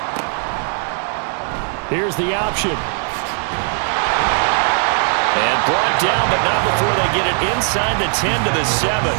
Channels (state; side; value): silent; left; 55 dB below the other